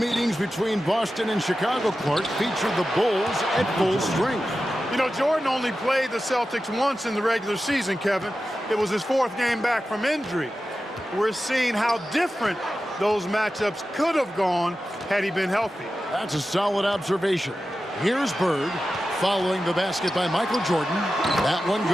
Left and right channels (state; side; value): normal; both; correlation 0.93